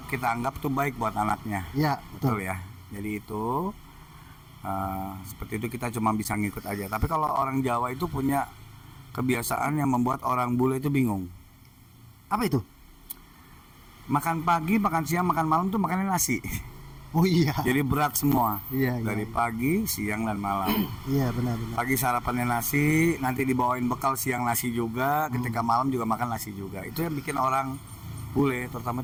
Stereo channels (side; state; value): both; identical; correlation 1.00